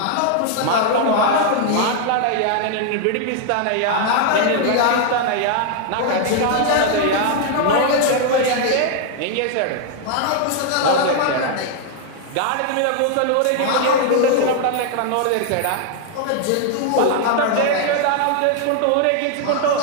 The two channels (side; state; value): both; different; correlation 0.00